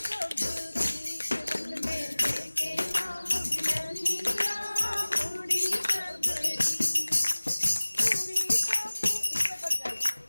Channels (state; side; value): inverted; both; correlation -1.00